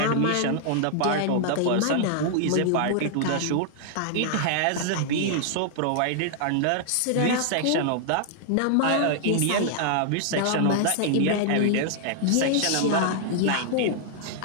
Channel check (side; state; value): both; different; correlation -0.01